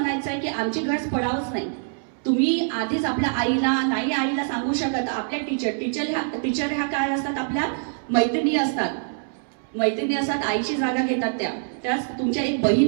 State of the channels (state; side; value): silent; left; 62 dB below the other